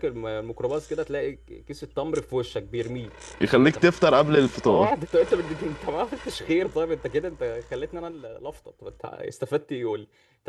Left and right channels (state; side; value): identical; both; correlation 1.00